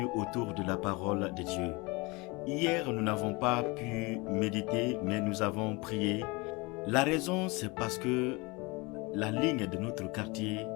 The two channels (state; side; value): quieter; right; 26.1 dB